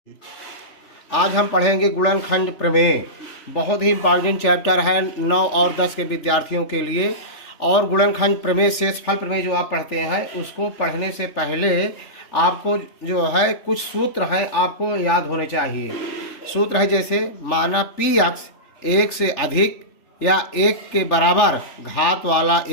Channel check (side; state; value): right; late; 3.4 ms